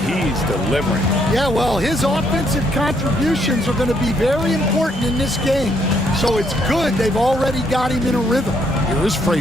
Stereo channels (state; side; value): normal; both; correlation 0.71